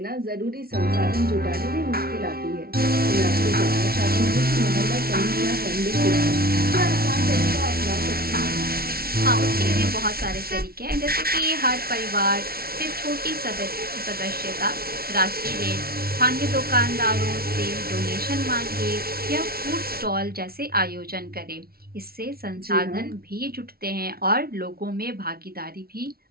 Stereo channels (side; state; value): left; late; 0.44 ms